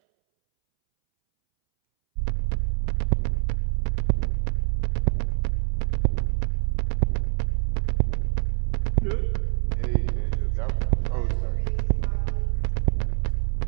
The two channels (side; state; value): left; silent; 62 dB below the other